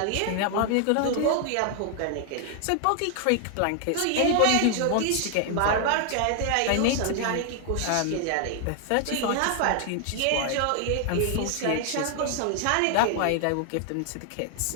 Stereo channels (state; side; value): different; both; correlation 0.00